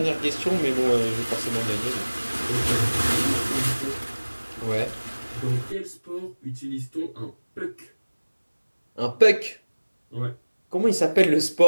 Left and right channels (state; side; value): inverted; both; correlation -1.00